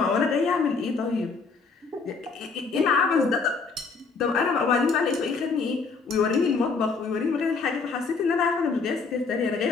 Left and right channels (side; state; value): right; quieter; 4.7 dB